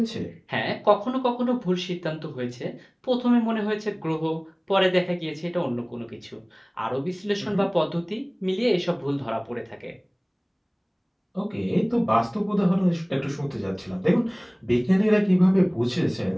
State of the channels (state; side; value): identical; both; correlation 1.00